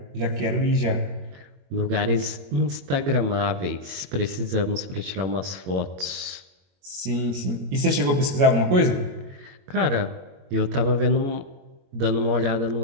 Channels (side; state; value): left; late; 22 ms